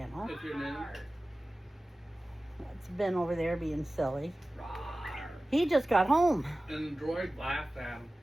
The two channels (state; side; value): normal; both; correlation 0.96